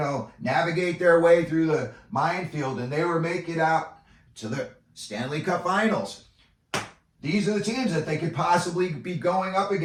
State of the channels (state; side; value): identical; both; correlation 1.00